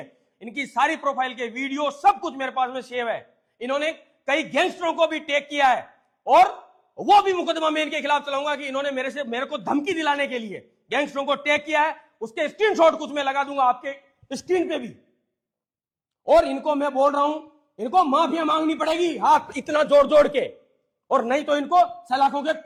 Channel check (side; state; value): both; identical; correlation 1.00